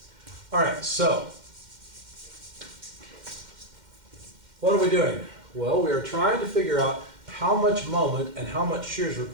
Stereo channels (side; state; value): left; late; 2.1 ms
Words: All right, so what are we doing? Well, we are trying to figure out how much moment and how much shear is